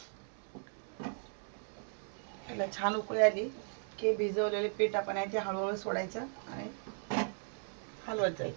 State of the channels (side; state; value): left; silent; 53 dB below the other